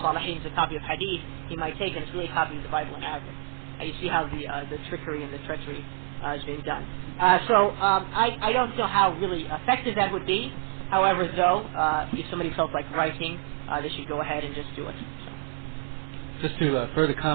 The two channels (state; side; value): silent; left; 60 dB below the other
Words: al-Salihin, it's a copy of Hadith. He might take it, it's really a copy of the Bible in Arabic. You see how the trickery and the treachery is being done. So I don't know how really effective that would be. However, though, if somebody felt like writing, they should go ahead and just do it. So. Just to further